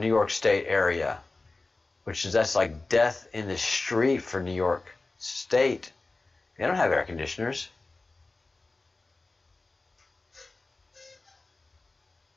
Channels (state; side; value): quieter; right; 3.4 dB